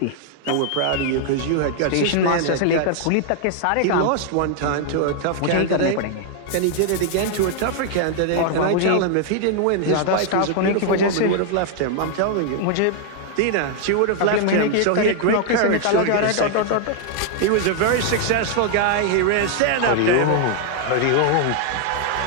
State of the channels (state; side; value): different; both; correlation 0.00